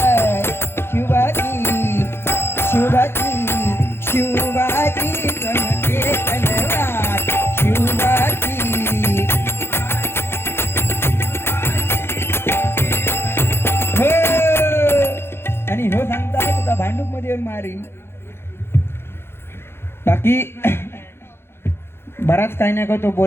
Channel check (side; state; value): right; late; 0.12 ms